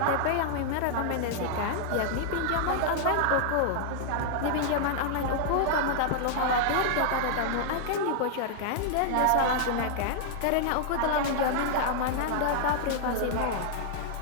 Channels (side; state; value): both; different; correlation -0.01